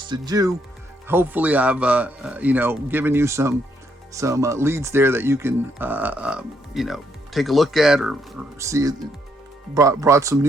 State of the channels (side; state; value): both; normal; correlation 0.74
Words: you. Hopefully, I've given you some leads there that you can take a look at or see. Brought some